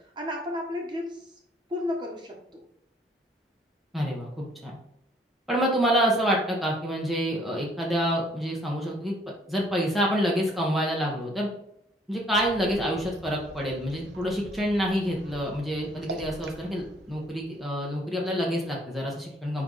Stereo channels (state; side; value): normal; both; correlation 0.62